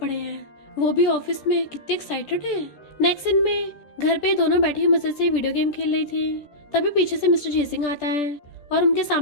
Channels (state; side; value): late; right; 14 ms